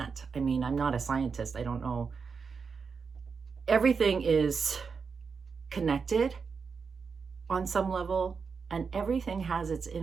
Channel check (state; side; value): quieter; left; 5.4 dB